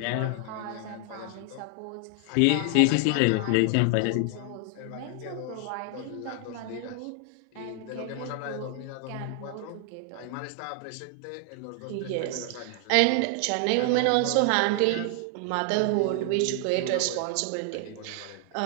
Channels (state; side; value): different; both; correlation 0.00